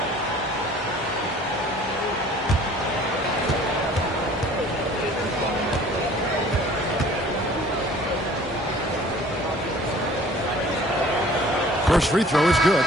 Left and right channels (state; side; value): normal; both; correlation 0.50